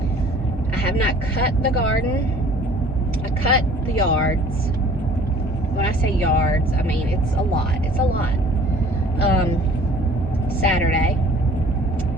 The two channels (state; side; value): normal; both; correlation 0.51